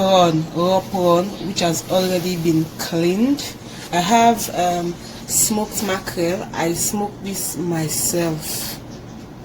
raw prawn, which has already been cleaned. I have smoked mackerel. I smoked this myself,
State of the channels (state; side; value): identical; both; correlation 1.00